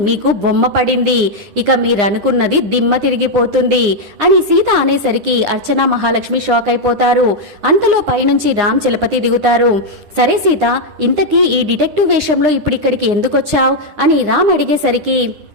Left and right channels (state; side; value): late; left; 9.8 ms